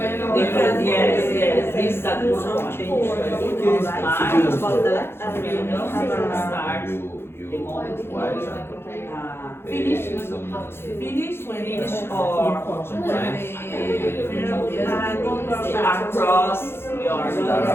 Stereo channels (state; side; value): late; right; 0.11 ms